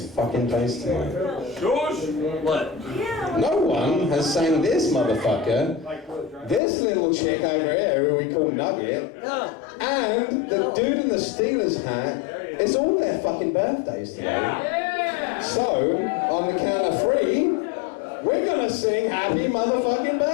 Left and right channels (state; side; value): drops out; right; at 6.6 s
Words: fucking place tonight. What? No one has sang this motherfucker, this little chick over here who we call Nugget, and the dude in the Steelers hat. It's all their fucking birthdays today. So, on the count of 3, we're gonna sing happy motherfucking